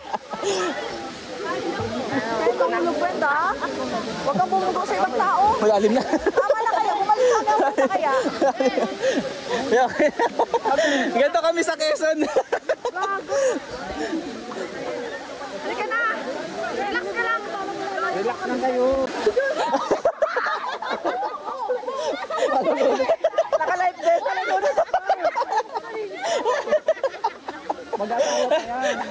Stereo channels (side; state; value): both; identical; correlation 1.00